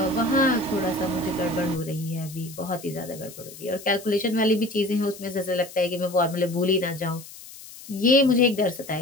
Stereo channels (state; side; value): noise; left; hiss, 16 dB below the sound